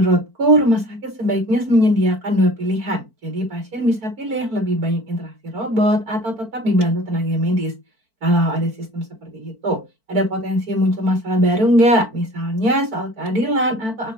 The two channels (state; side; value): late; left; 4.5 ms